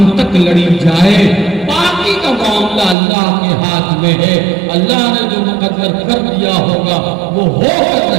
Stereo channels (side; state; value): left; drops out; at 3.0 s